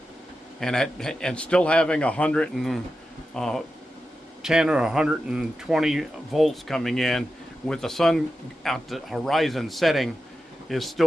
And still having 110 or 120 volts coming in with the sun at the horizon setting is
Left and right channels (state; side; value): normal; both; correlation 0.91